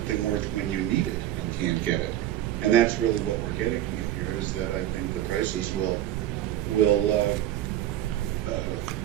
worth when you need it and can't get it? And that's really what we're getting at here, is that I think the prices will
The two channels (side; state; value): left; quieter; 12.5 dB